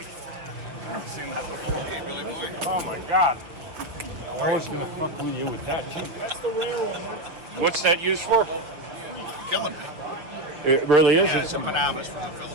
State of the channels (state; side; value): late; left; 6.3 ms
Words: Oh my God! I was gonna fuck with you with that too. That's the rare one. What's that used for? Killing me. It really is. Yeah, it's a Panamas from the